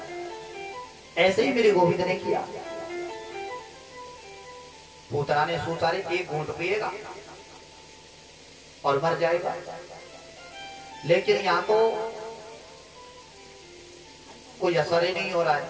ऐसे ही मेरे गोविंद ने किया। पूतना ने सोचा रे एक घूंट पिएगा और मर जाएगा, लेकिन यहाँ तो कोई असर ही नहीं हो रहा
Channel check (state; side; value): identical; both; correlation 1.00